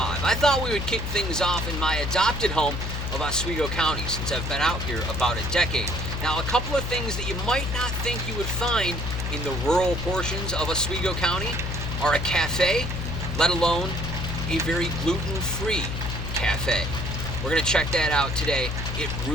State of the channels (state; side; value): noise; left; hum, 4 dB below the sound